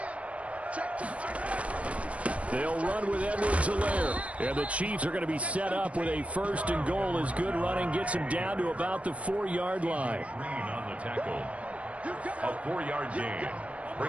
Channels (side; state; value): left; late; 0.064 ms